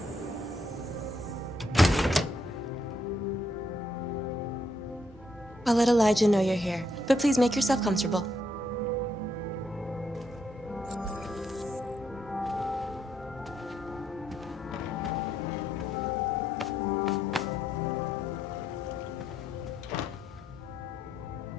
I'll let Elijah know you're here, but please make yourself comfortable.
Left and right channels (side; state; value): both; normal; correlation 0.75